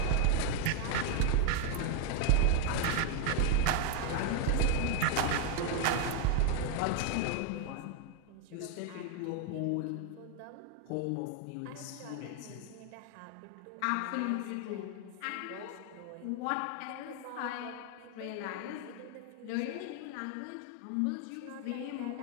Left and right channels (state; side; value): different; both; correlation 0.00